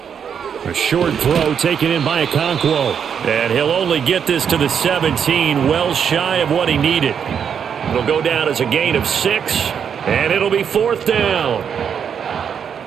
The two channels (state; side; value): quieter; left; 7.6 dB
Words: A short throw taken in by Okonkwo. And he'll only get this to the 17, well shy of what he needed. It'll go down as a gain of 6, and it'll be 4th down.